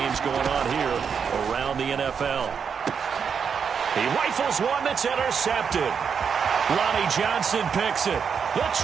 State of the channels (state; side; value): quieter; left; 6.6 dB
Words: going on here around the NFL. He rifles one that's intercepted. Lonnie Johnson picks it. The